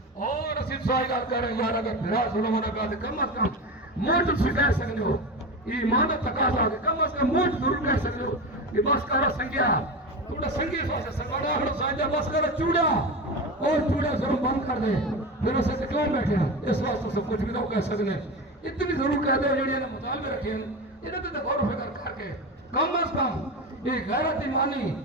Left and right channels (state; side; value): normal; both; correlation 0.24